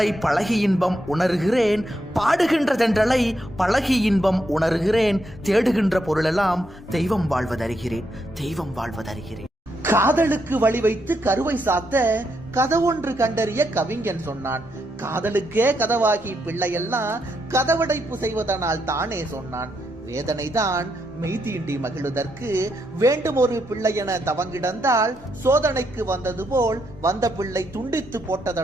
பழகி இன்பம் உணர்கிறேன், பாடுகின்ற தென்றலை பழகி இன்பம் உணர்கிறேன். தேடுகின்ற பொருளெல்லாம் தெய்வம் வாழ்வதறிகிறேன், தெய்வம் வாழ்வதறிகிறேன். காதலுக்கு வழி வைத்து கருவை சாத்த கதவொன்று கண்டறிய கவிஞன் சொன்னான். காதலுக்கே கதவாகி பிள்ளையெல்லாம் கதவடைப்பு செய்வதனால் தானே சொன்னான். வேதனைதான் மெய்தீண்டி மகிழுதற்கு வேண்டும் ஒரு பிள்ளை என தவங்கிடந்தால் சோதனைக்கு வந்தது போல் வந்த பிள்ளை துண்டித்து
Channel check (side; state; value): both; normal; correlation 0.79